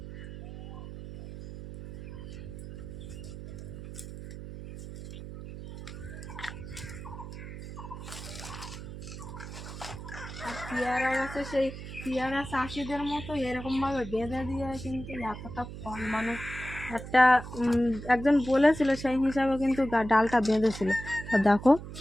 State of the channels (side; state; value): right; noise; hum, 11 dB below the sound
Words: পেয়ারা গাছে সেই পেয়ারা চাষিদের মতো এরকমভাবে বেঁধে দিয়ে কিন্তু এতটা ফল মানে একটা একজন বলেছিল সেই হিসাবে কিন্তু ডালটা বেঁধেছিল। তা দেখো